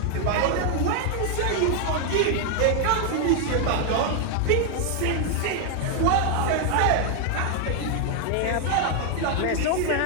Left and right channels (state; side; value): different; both; correlation 0.00